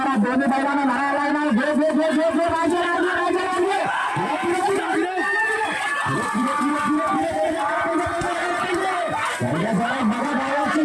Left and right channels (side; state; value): both; identical; correlation 1.00